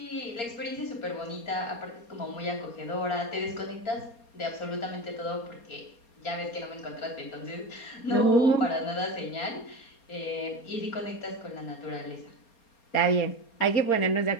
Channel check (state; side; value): late; right; 4.3 ms